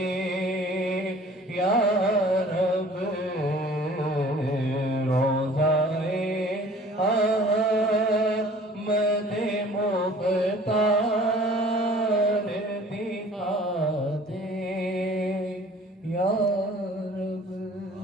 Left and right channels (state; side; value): normal; both; correlation 0.50